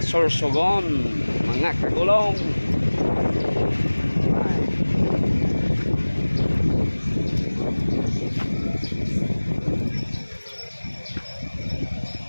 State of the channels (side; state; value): both; inverted; correlation -1.00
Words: Sorsogon, mga kagulong.